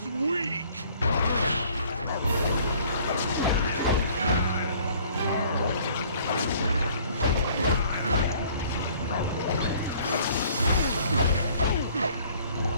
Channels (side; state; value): both; inverted; correlation -0.56